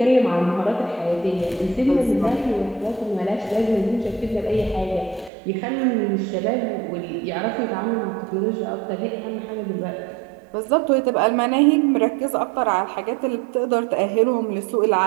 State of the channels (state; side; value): drops out; left; at 5.3 s